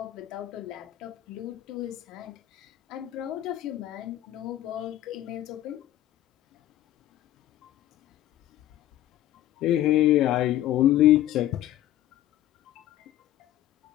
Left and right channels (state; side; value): quieter; right; 13.5 dB